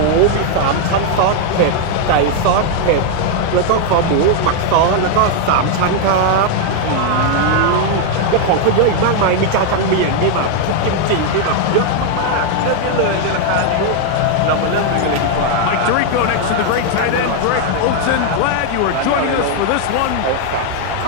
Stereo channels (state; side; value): different; both; correlation 0.00